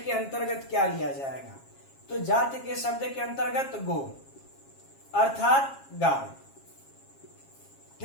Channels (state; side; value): late; right; 7.4 ms